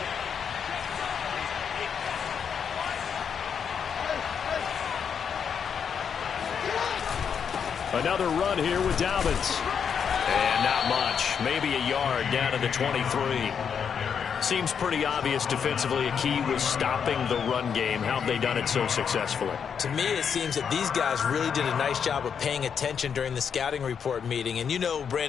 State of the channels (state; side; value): quieter; right; 7.1 dB